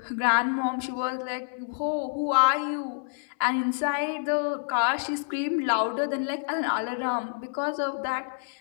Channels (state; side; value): silent; right; 60 dB below the other